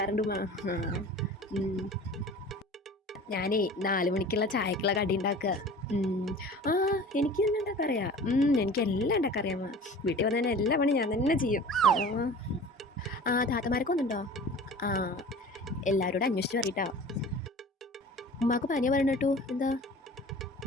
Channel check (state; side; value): normal; both; correlation 0.41